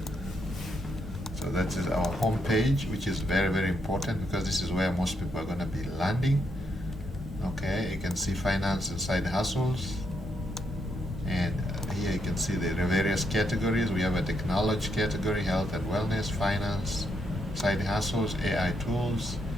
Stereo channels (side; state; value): both; normal; correlation 0.78